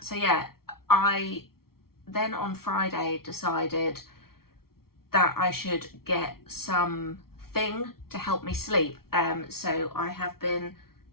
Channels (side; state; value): right; late; 0.94 ms